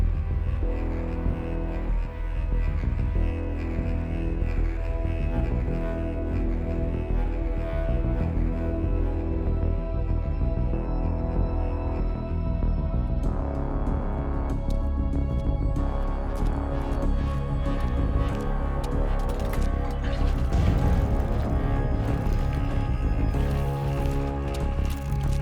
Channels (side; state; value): both; identical; correlation 1.00